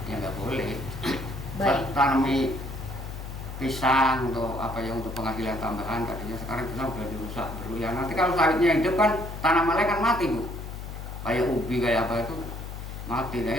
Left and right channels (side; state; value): left; noise; hum, 9 dB below the sound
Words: ya nggak boleh. Baik. Tanami pisang untuk untuk penghasilan tambahan, tadinya sekarang pisang udah dirusak dulu ya. Nanti kalau sawitnya hidup kan tanamannya kan mati Bu. Kayak ubi kayak apa itu mati,